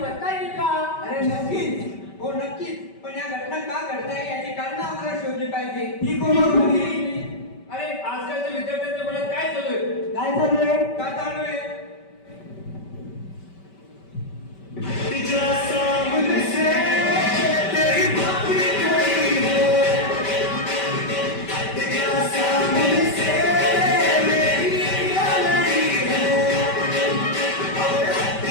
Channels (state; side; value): late; right; 5.2 ms